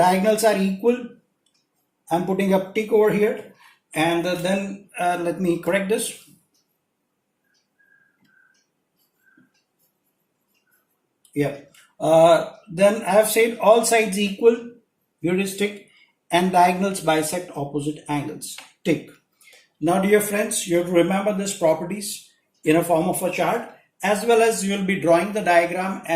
are equal, I'm putting a tick over here, and then let me correct this. Yeah. Then I have said all sides equal, here is tick, and diagonals bisect opposite angles, tick. Now dear friends, you have to remember these properties in a form of a chart, as well as you will be drawing the diagram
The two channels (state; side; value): identical; both; correlation 1.00